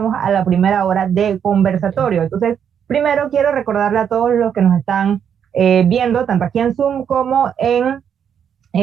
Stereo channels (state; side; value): quieter; left; 8.2 dB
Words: a la primera hora de conversatorio. Entonces, primero quiero recordarle a todos los que nos están viendo, tanto aquí en Zoom como en